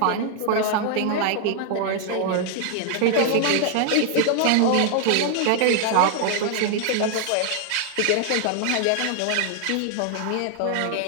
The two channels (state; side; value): different; both; correlation 0.00